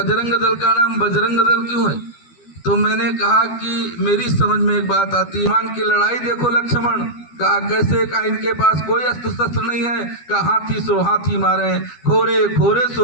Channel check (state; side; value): late; right; 12 ms